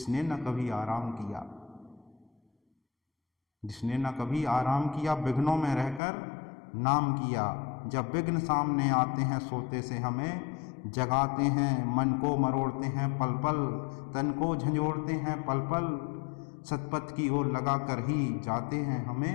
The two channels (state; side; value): drops out; right; at 6.0 s